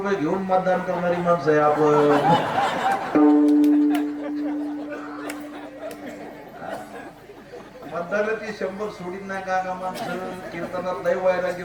घेऊन मतदान करणारी माणसं आहे आपण. मतदानाची 100 सोडीत नाही का माणसं? कीर्तनात लय वैराग्य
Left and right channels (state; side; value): identical; both; correlation 1.00